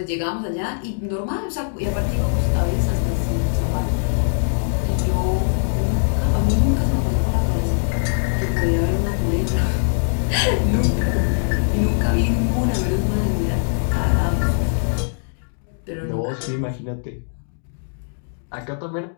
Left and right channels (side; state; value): right; silent; digital silence